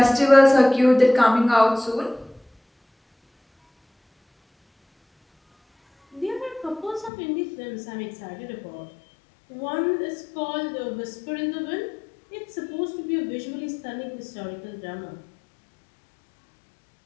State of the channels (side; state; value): right; drops out; at 7.1 s